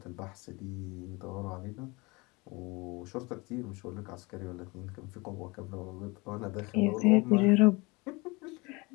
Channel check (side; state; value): right; quieter; 25.6 dB